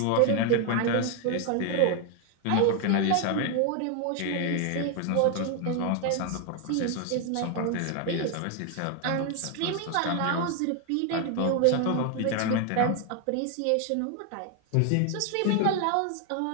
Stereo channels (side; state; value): both; different; correlation 0.01